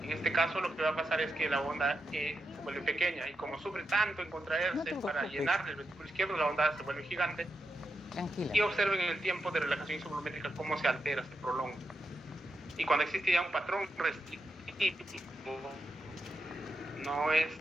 En este caso lo que va a pasar es que la onda E se vuelve pequeña, y como sufre tanto en contraerse para llenar el ventrículo izquierdo, la onda A se vuelve gigante. Tranquila. Y observen el tiempo de relajación isovolumétrica cómo se altera, se prolonga. Y cuando existe ya un patrón restrictivo, no es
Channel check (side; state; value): both; normal; correlation 0.86